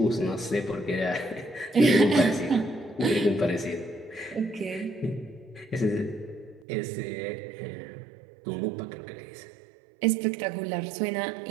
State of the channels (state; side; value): drops out; left; at 6.7 s